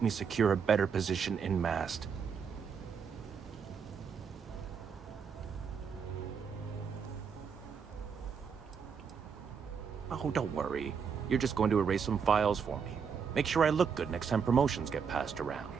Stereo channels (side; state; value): left; quieter; 6.5 dB